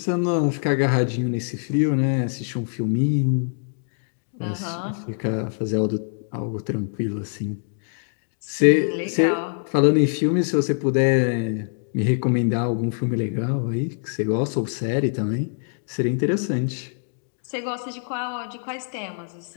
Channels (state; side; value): silent; right; digital silence